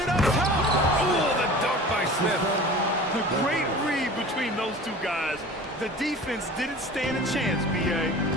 up top. Ooh, the dunk by Smith. The great read between those two guys. The defense didn't stand a chance, B.A.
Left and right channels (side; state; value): both; normal; correlation 0.40